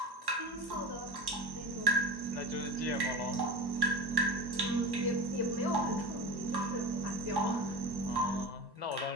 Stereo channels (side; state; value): left; late; 1.1 ms